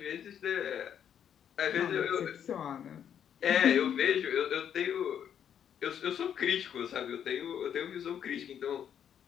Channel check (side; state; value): right; quieter; 8.9 dB